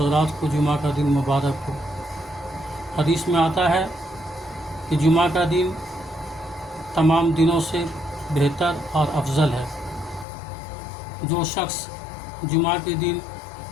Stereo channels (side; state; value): right; drops out; at 10.2 s